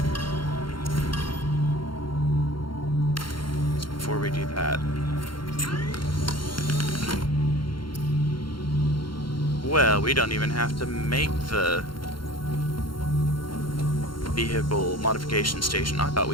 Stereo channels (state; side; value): late; right; 0.73 ms